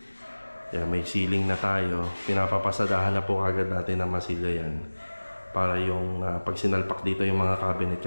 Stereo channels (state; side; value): inverted; both; correlation -1.00